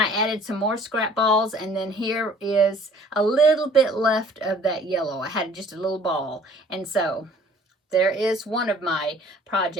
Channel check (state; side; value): normal; both; correlation 0.53